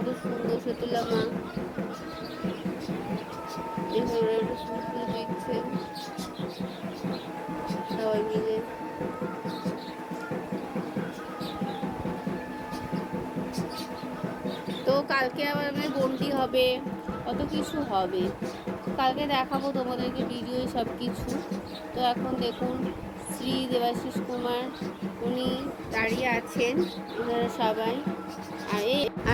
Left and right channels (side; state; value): both; identical; correlation 1.00